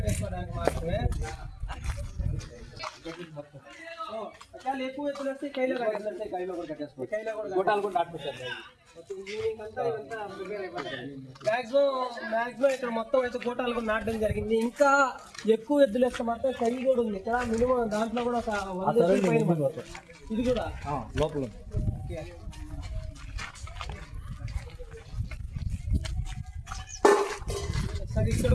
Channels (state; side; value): identical; both; correlation 1.00